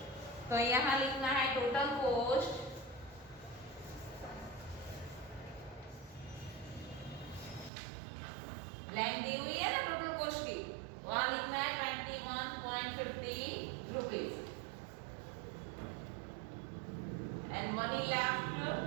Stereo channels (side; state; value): left; drops out; at 7.7 s